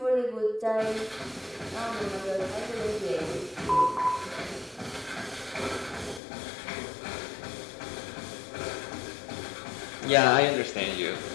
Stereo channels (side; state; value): right; drops out; at 6.2 s